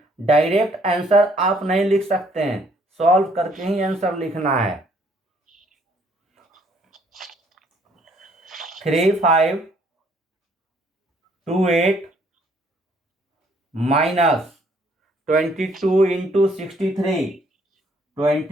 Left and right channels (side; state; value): both; normal; correlation 0.64